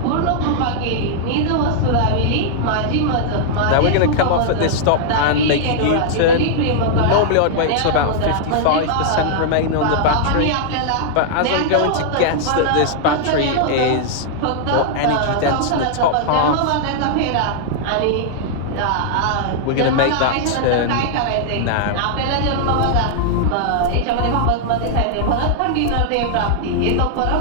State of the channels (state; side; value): different; both; correlation -0.01